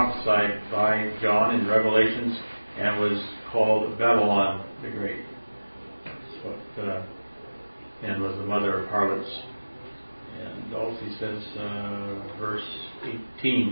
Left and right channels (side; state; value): both; inverted; correlation -1.00